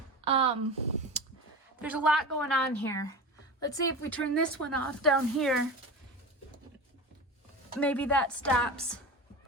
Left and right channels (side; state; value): both; normal; correlation 0.28